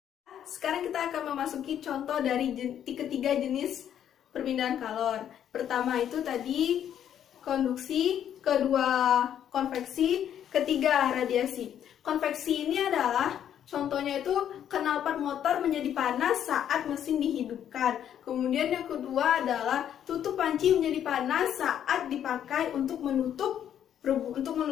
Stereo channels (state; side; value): quieter; right; 9.8 dB